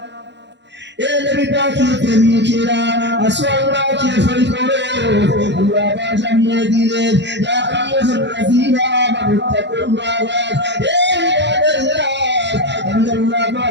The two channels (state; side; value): late; left; 0.51 ms